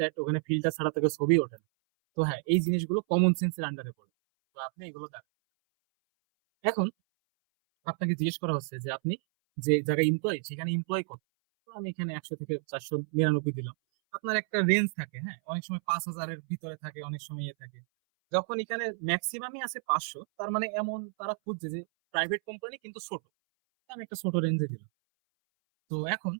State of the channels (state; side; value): silent; left; 57 dB below the other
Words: ওখানে ফিল্টার ছাড়া থেকে ছবি ওঠে না। তো হ্যাঁ, এই জিনিসগুলো কমন সেন্সের আন্ডারে পড়ে। তো আপনি এগুলো দেখেন। এখন আপনাকে জিজ্ঞেস করা হচ্ছে যে আপনি যে জায়গায় এমপ্লয় সেখানে এমপ্লয় কত। তো আমি এখানে 100 থেকে 499 দিলাম। আপনার একটা রেঞ্জ থাকে, হ্যাঁ, অনেক সময় 5,000-এর ভিতরে থাকে, অনেক সময় ইয়ে থাকে। যখন এখানে ম্যাক্সিমামই আছে 500, তার মানে এমন তারা খুঁজছে যে প্রাইভেট কোম্পানি কিন্তু ছোট। তো আমি একটা ছোট রেঞ্জে দিলাম। তো এখন